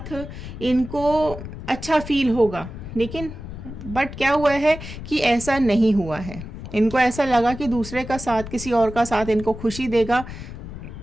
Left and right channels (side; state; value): left; noise; rumble, 11 dB below the sound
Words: इनको अच्छा फील होगा, लेकिन बट क्या हुआ है कि ऐसा नहीं हुआ है। इनको ऐसा लगा कि दूसरे का साथ, किसी और का साथ इनको खुशी देगा,